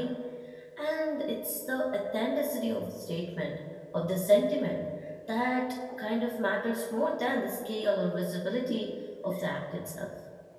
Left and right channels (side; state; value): both; identical; correlation 1.00